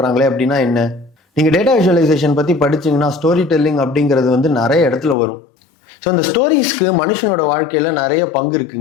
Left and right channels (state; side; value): drops out; right; at 5.2 s